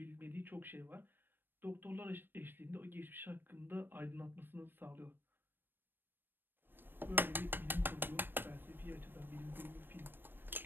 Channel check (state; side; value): late; left; 0.096 ms